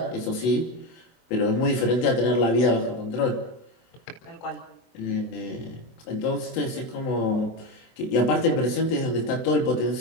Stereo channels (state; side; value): late; right; 24 ms